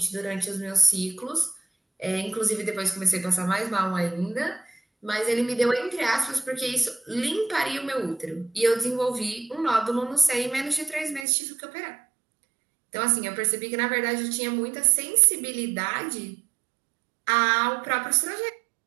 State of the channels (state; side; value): drops out; left; at 11.2 s